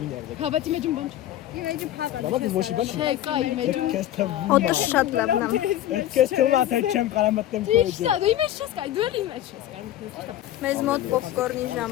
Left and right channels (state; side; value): quieter; right; 12.8 dB